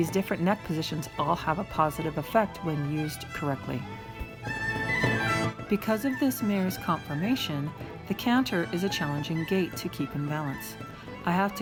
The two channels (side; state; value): both; identical; correlation 1.00